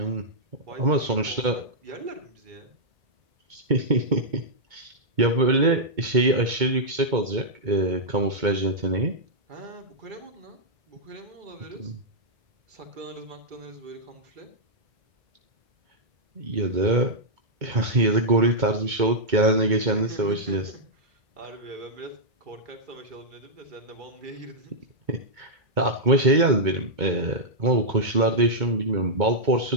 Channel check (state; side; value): late; left; 2.2 ms